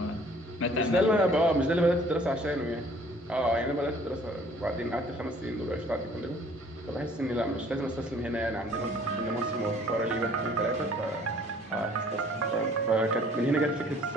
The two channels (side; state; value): both; normal; correlation 0.56